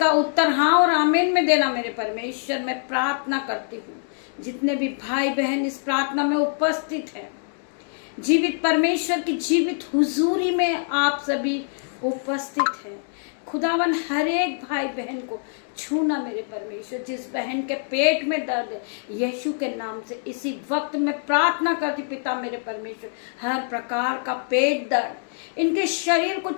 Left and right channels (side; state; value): right; silent; digital silence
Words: उत्तर हाँ और आमीन में देना मेरे परमेश्वर। मैं प्रार्थना करती हूँ जितने भी भाई बहन इस प्रार्थना में उपस्थित हैं, जीवित परमेश्वर की जीवित हुजूरी में आप सभी उपस्थित हैं। खुदावन हर एक भाई बहन को छूना मेरे परमेश्वर। जिस बहन के पेट में दर्द है, यीशु के नाम से इसी वक्त मैं प्रार्थना करती पिता मेरे परमेश्वर, हर प्रकार का पेट दर्द इनके शरीर को